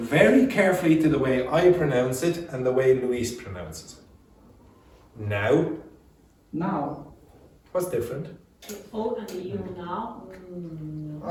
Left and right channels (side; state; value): both; identical; correlation 1.00